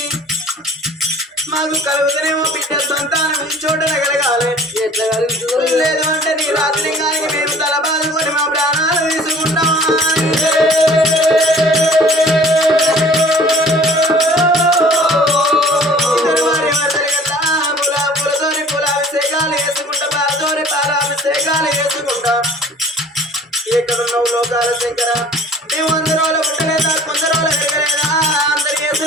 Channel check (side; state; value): both; normal; correlation 0.50